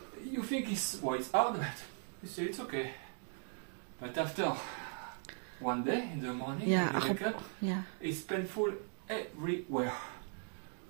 think it's hard, but you say it's okay. But after one day in the morning, you wake up, it's painful everywhere.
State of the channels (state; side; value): silent; left; 52 dB below the other